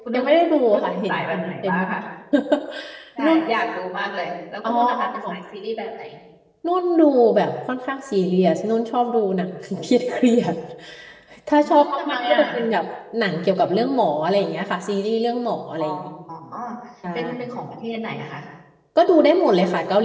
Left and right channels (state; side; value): identical; both; correlation 1.00